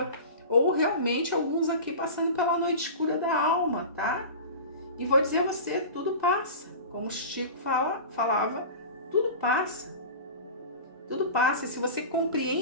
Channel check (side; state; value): both; inverted; correlation -0.33